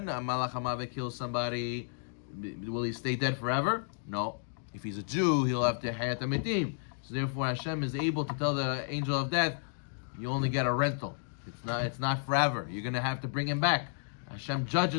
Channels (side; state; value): right; silent; digital silence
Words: Malach HaMavet kills somebody, will he stay dead forever? No. If he's a Jew, he'll have to Hayat HaMetim. So therefore Hashem is able to tell the angel of death, you only get a rental. It's not forever. You're going to have to bring him back. Hashem